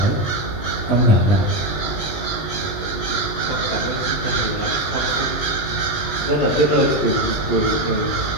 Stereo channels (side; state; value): right; late; 20 ms